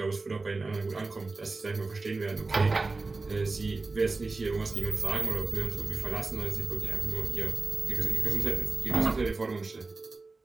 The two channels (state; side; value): quieter; left; 3.7 dB